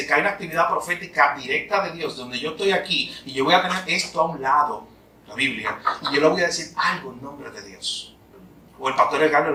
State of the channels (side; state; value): both; identical; correlation 1.00